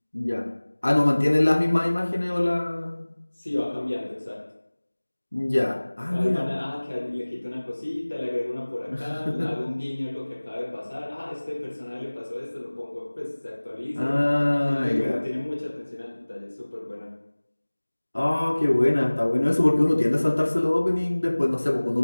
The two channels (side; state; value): both; inverted; correlation -1.00